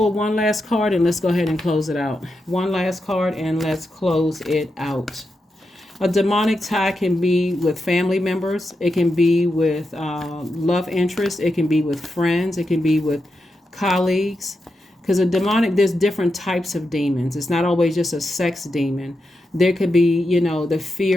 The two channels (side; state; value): both; normal; correlation 0.87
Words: one last card and let's go ahead and close it out. One last card and let's close it out. A demonic tie can be with family members. It can be with love interests. It can be with friends. It can be with colleagues. Because there's different types of demons. It's not always just a sex demon. There could be, the